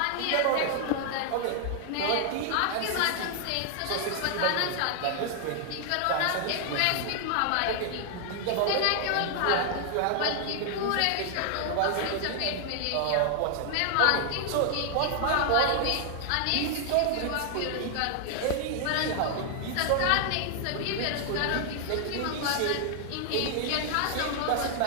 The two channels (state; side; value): different; both; correlation 0.00